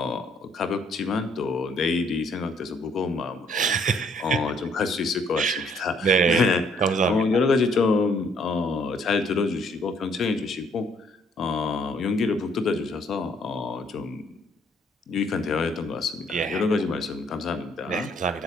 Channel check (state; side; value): normal; both; correlation 0.65